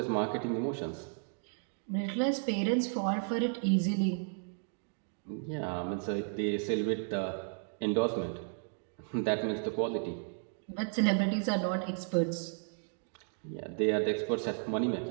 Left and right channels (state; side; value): silent; left; 55 dB below the other